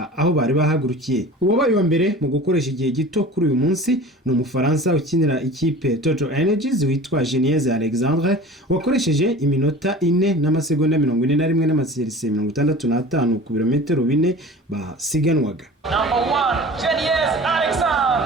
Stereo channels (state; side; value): normal; both; correlation 0.40